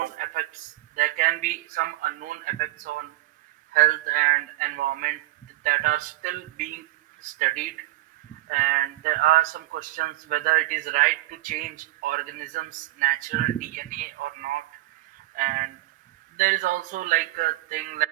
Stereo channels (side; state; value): left; quieter; 17.6 dB